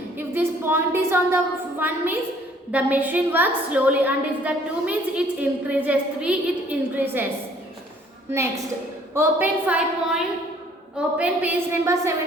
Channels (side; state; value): both; normal; correlation 0.59